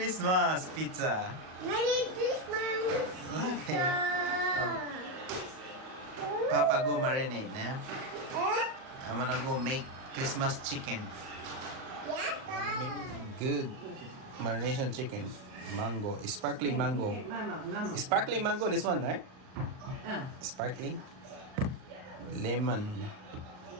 スマス、ピッツァ。メリークリスマス。ピッツァ。Papa go marinate, nah? え？ I'm gonna go make Christmas chicken. やったー。 Good marination chicken. Mango, sparkling mango. Sparkling mango, this one, right? Sparkling. Lemon,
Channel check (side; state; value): left; late; 38 ms